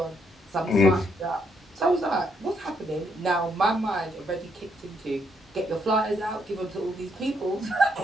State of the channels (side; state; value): both; normal; correlation 0.74